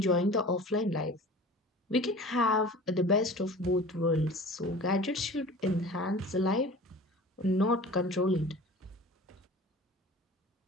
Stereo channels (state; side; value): normal; both; correlation 0.40